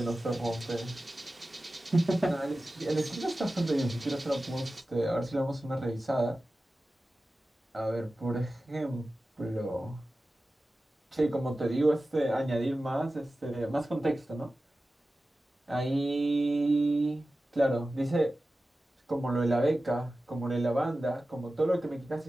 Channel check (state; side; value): normal; both; correlation 0.95